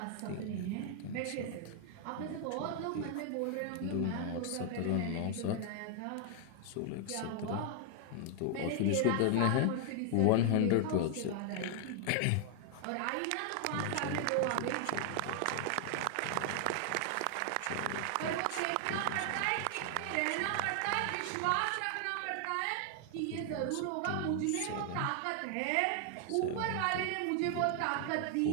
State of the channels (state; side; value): different; both; correlation 0.00